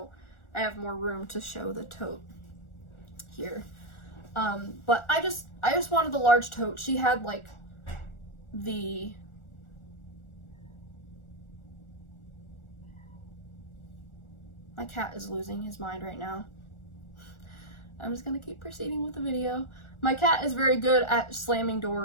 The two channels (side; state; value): right; late; 1.4 ms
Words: I have more room to show the tote here. But I just wanted the large tote. She had like the my cat is losing his mind right now. I'm just gonna keep proceeding with the video. My cat is very good at slamming